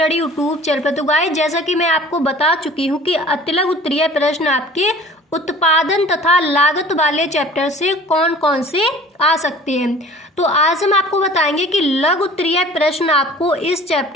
यूट्यूब चैनल पर। तो गाइस, जैसा कि मैं आपको बता चुकी हूँ कि अतिलघु उत्तरीय प्रश्न आपके उत्पादन तथा लागत वाले चैप्टर से कौन कौन से आ सकते हैं। तो आज हम आपको बताएंगे कि लघु उत्तरीय प्रश्न आपको इस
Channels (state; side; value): normal; both; correlation 0.45